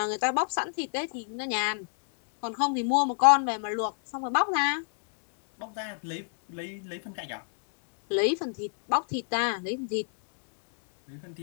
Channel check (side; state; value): right; silent; digital silence